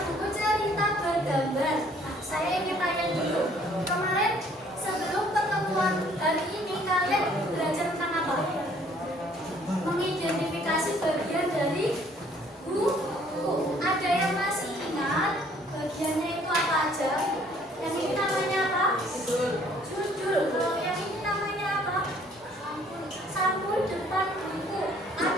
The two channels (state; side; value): normal; both; correlation 0.60